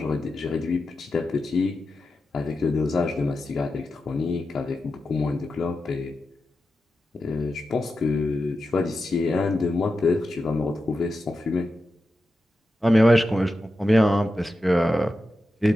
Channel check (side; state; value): both; normal; correlation 0.90